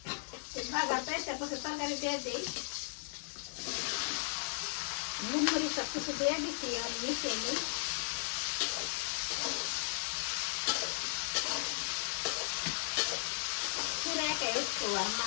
ভাজা পেঁয়াজটা পরে তরকারি দিয়ে দিই নুন মরিচ সব কিছু দিয়ে দিচ্ছি আর মিশিয়ে নিই পুরো একা একটু আর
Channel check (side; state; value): right; silent; digital silence